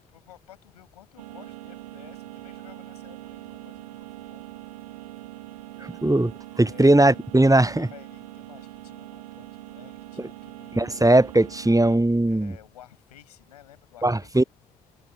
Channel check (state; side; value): normal; both; correlation 0.85